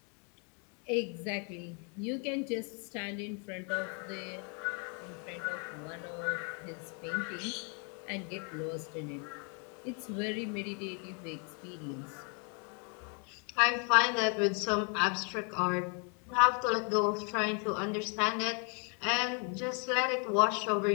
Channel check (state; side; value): quieter; right; 37.8 dB